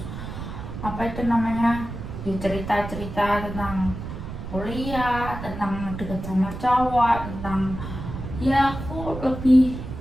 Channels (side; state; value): right; noise; rumble, 8 dB below the sound